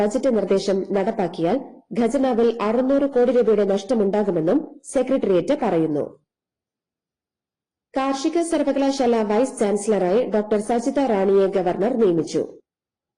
ബജറ്റ് നിർദ്ദേശം നടപ്പാക്കിയാൽ ഖജനാവിൽ 600 കോടി രൂപയുടെ നഷ്ടമുണ്ടാകുമെന്നും സെക്രട്ടേറിയറ്റ് പറയുന്നു. കാർഷിക സർവകലാശാല വൈസ് ചാൻസലറായി ഡോക്ടർ സജിത റാണിയെ ഗവർണർ നിയമിച്ചു.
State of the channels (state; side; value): identical; both; correlation 1.00